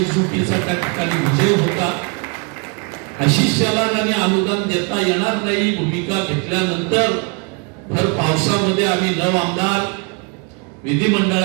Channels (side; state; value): left; quieter; 33.7 dB